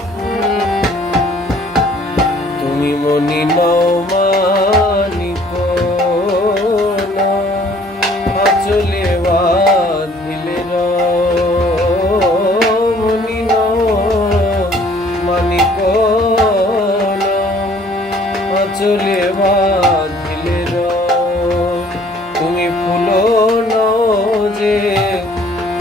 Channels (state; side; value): normal; both; correlation 0.57